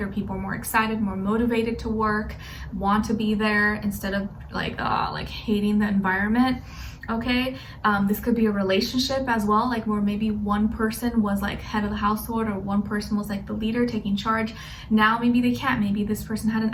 or people are more excited, more motivated to work, want to be there, instead of like hating the environment. Okay, this could be a relationship as well, like where maybe one person was like head of the household, or one person was like the leader taking charge. Now maybe they can't, maybe this person had an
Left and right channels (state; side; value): identical; both; correlation 1.00